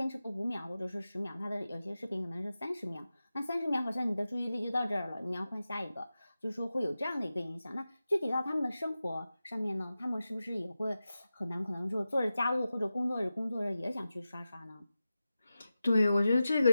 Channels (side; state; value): both; inverted; correlation -0.93